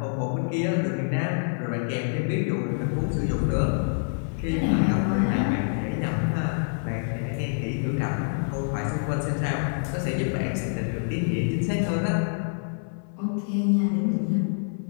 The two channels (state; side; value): silent; right; 61 dB below the other